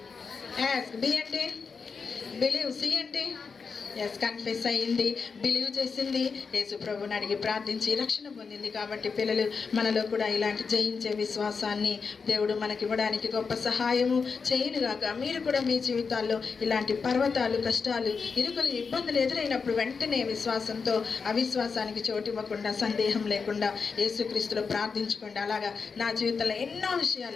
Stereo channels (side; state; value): right; quieter; 5.2 dB